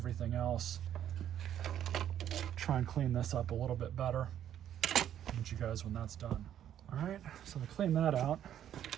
else. Try and clean this up a little bit better. I'll meet you guys when that's done. All right, so to clean that out,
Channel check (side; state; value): left; quieter; 10.5 dB